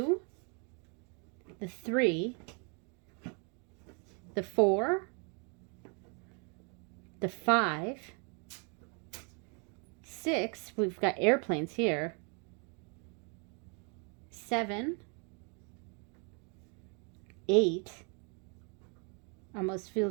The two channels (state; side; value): quieter; left; 36.5 dB